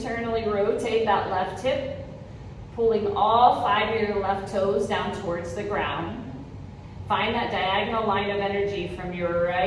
rotate that left hip, pulling all 5 of your left toes down towards the ground. Find that diagonal line of energy from your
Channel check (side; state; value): both; identical; correlation 1.00